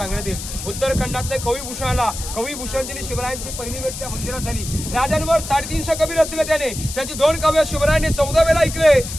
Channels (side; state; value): left; noise; hiss, 9 dB below the sound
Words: येईल. उत्तराखंडातल्या कविभूषण आला. कविभूषणजीने शिवरायांची पहिली भेट त्या मंदिरात झाली. राजांवर 350 कवी रचले त्याने. त्याची 2 काव्य शिवरायांनी 14 वेळा ऐकले